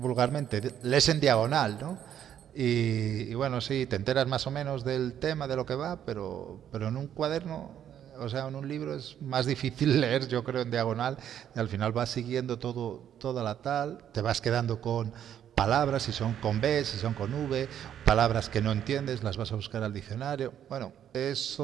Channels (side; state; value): left; quieter; 9.9 dB